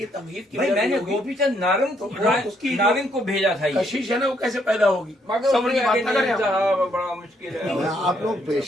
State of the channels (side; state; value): both; normal; correlation 0.71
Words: تمہید کی بھائی میں نے گوپی چند نارنگ کو بھیجا تھا، یہ کشش ہے نا وہ کیسے پیدا ہوگی؟ مگر صبر کی بات نہ کریں آپ۔ صاحب بڑا مشکل ہے۔ آپ لوگ